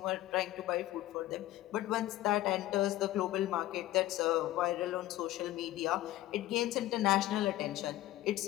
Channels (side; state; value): right; quieter; 15.3 dB